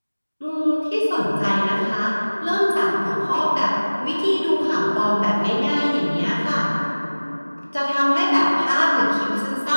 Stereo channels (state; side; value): inverted; both; correlation -1.00